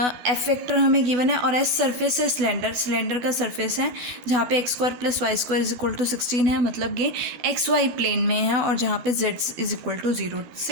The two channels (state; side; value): late; left; 13 ms